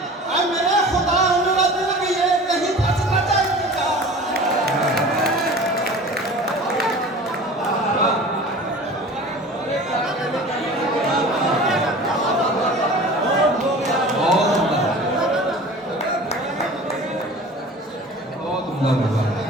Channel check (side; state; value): both; normal; correlation 0.40